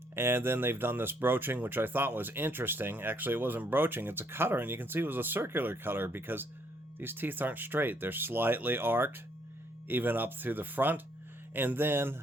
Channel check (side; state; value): both; normal; correlation 0.69